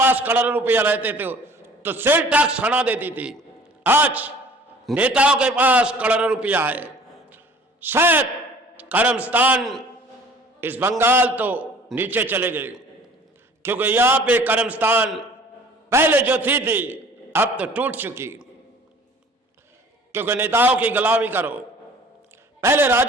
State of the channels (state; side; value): normal; both; correlation 0.50